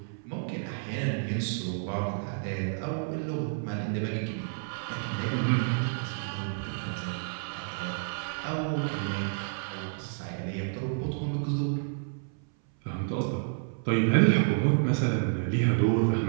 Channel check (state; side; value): silent; left; 58 dB below the other